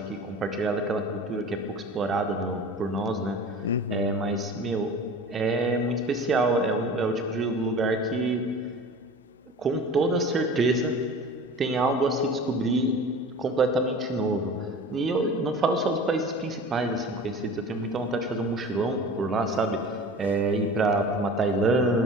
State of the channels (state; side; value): normal; both; correlation 0.39